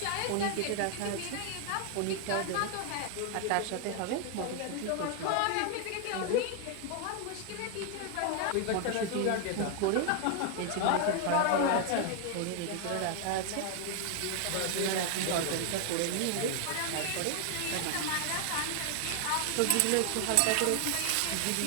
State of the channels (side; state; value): both; different; correlation 0.00